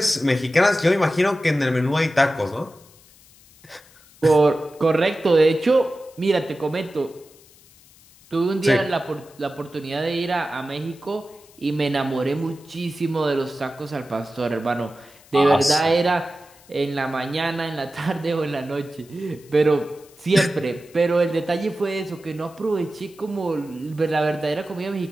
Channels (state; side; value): noise; left; hiss, 27 dB below the sound